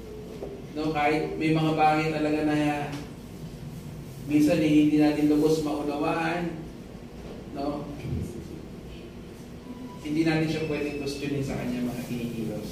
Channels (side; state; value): both; identical; correlation 1.00